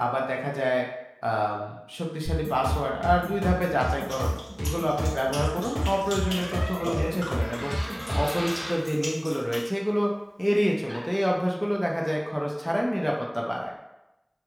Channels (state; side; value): identical; both; correlation 1.00